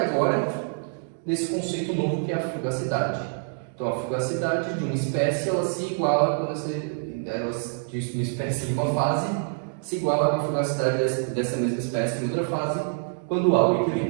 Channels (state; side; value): silent; left; digital silence